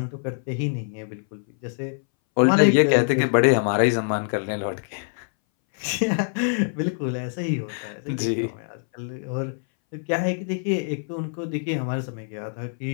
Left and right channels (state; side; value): silent; right; 60 dB below the other